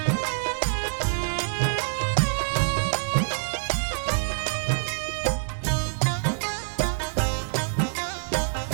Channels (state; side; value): silent; left; 61 dB below the other